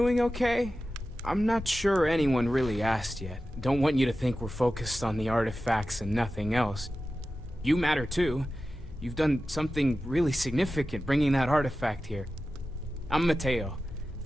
okay? I'm not sure anyone really asked yet. Don't want you to think we're focused on the artifacts and nothing else. You matter too. You've done something really significant bringing that artifact here. I'm Mateo,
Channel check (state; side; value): normal; both; correlation 0.94